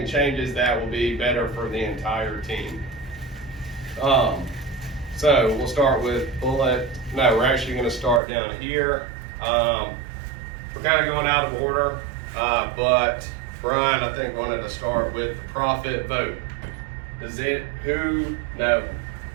changes that will be better for the entire team. So we'll start with bullet. No, we're actually going to start down here. We're kind of going out of order, but Brian, I think, wanted to start with the profit vote. No,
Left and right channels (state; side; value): drops out; left; at 8.2 s